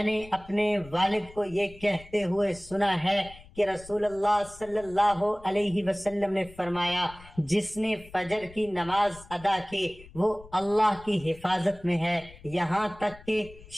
نے اپنے والد کو یہ کہتے ہوئے سنا ہے کہ رسول اللہ صلی اللہ علیہ وسلم نے فرمایا جس نے فجر کی نماز ادا کی وہ اللہ کی حفاظت میں ہے یہاں تک کہ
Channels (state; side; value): noise; left; rumble, 21 dB below the sound